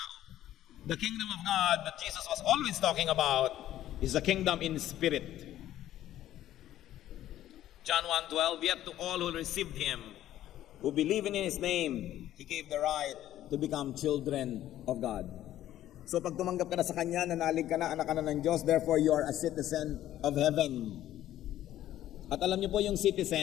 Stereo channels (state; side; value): quieter; right; 12.9 dB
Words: The kingdom of God that Jesus was always talking about is a kingdom in spirit. John 1:12, "Yet to all who received Him, who believe in His name, He gave the right to become children of God." So pag tumanggap ka na sa Kanya, nanalig ka na, anak ka na ng Diyos, therefore you are a citizen of heaven. At alam niyo po yung